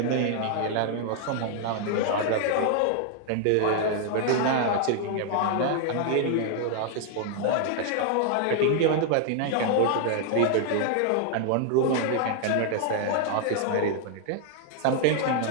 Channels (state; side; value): different; both; correlation 0.00